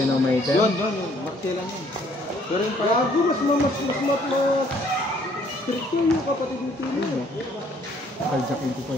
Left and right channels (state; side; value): normal; both; correlation 0.62